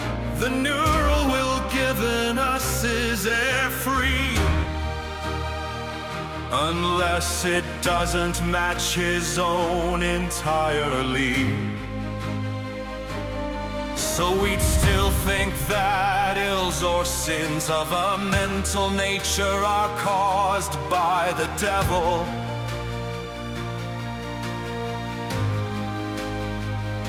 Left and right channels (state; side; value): identical; both; correlation 1.00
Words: The neural will given us is air free, unless it doesn't match his own entirely. So we'd still think that ills or sins of a mental nature are caused by the devil.